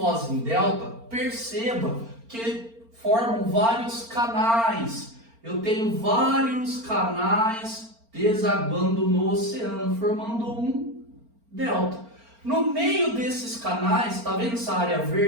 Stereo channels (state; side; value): late; left; 4.4 ms